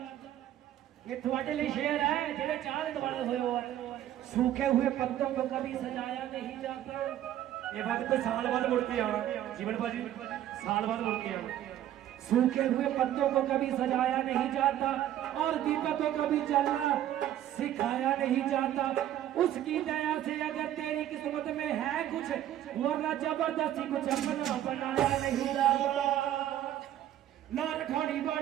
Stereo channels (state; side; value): quieter; left; 12.1 dB